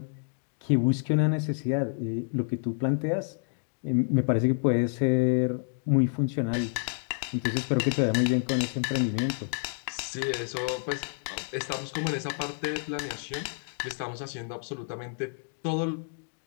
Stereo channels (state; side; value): silent; right; 59 dB below the other